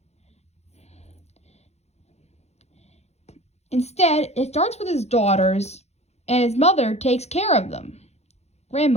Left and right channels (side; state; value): right; late; 0.31 ms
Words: Instead, it starts with his daughters, and his mother takes care of them,